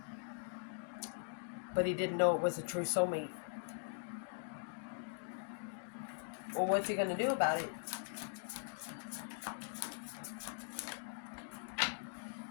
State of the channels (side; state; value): right; silent; digital silence